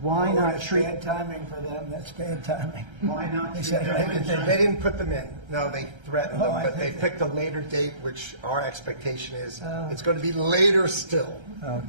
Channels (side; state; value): left; late; 1.3 ms